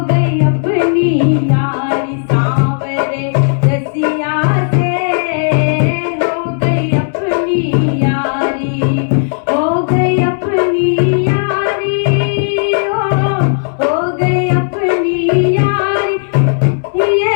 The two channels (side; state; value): right; silent; digital silence